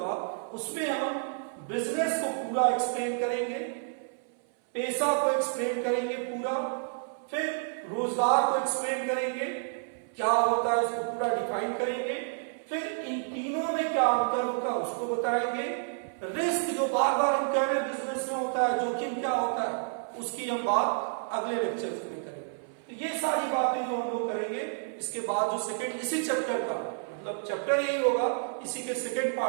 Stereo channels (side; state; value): left; silent; 57 dB below the other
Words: उसमें हम बिजनेस को पूरा एक्सप्लेन करेंगे, पेशा को एक्सप्लेन करेंगे पूरा, फिर रोजगार को एक्सप्लेन करेंगे, क्या होता है उसको पूरा डिफाइन करेंगे, फिर इन तीनों में क्या अंतर होगा उसको बताएंगे। रिस्क जो बार बार हम कह रहे हैं बिजनेस में होता है, जोखिम क्या होता है उसकी हम बात अगले लेक्चर्स में करेंगे। तो ये सारी बातें जो हम लोग करेंगे, इसके बाद जो सेकंड इसी चैप्टर का मतलब चैप्टर यही होगा, इसी के सेकंड